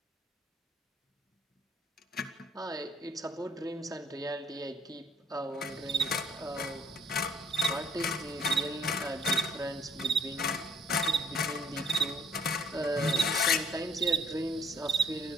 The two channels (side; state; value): both; normal; correlation 0.62